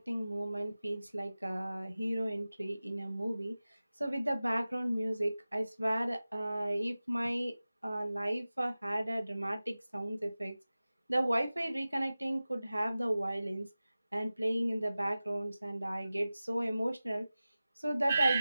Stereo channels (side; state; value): both; inverted; correlation -0.96